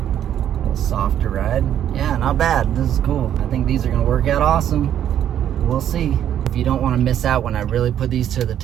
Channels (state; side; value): quieter; left; 10.4 dB